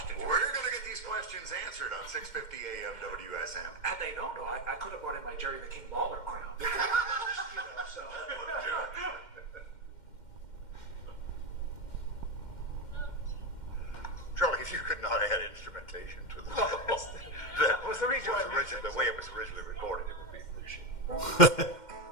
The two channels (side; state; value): right; late; 2.1 ms